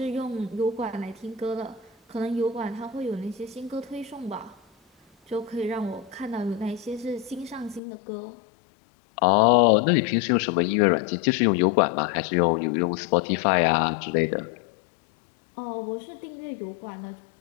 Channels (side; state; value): right; drops out; at 7.8 s